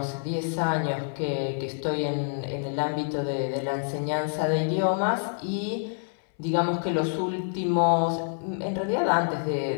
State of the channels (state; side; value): silent; right; 60 dB below the other